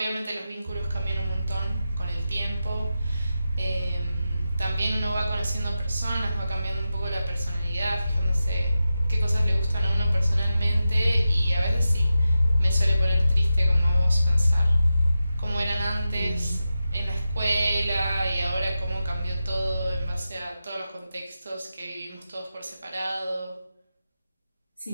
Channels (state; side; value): inverted; both; correlation -0.91